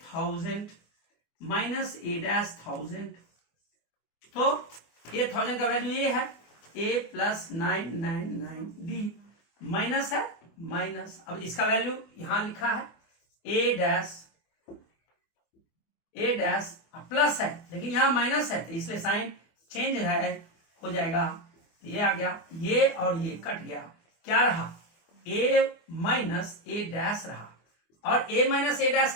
1000 माइनस a डैश 1000, तो a 1000 का वैल्यू ये है, a प्लस 999 डी, माइनस है माइनस, अब इसका वैल्यू यहां लिखा है a डैश प्लस है, लेकिन यहां माइनस है, तो इसलिए साइन चेंज है, हो जाएगा, तो ये आ गया, ये और ये कट गया, क्या रहा, a माइनस a डैश रहा, और a माइनस a डैश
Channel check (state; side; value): late; right; 24 ms